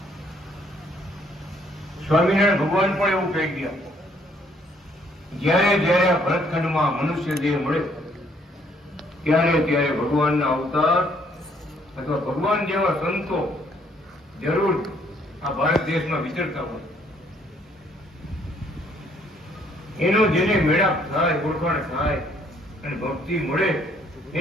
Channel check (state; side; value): normal; both; correlation 0.66